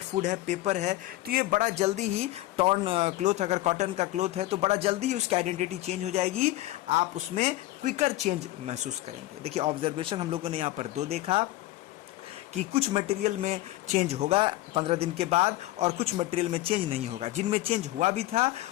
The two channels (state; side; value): quieter; right; 16.7 dB